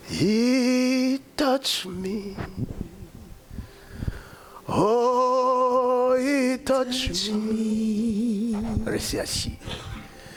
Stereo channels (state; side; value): identical; both; correlation 1.00